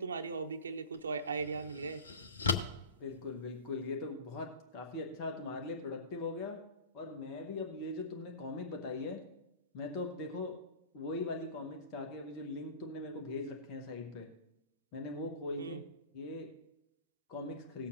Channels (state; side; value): inverted; both; correlation -0.35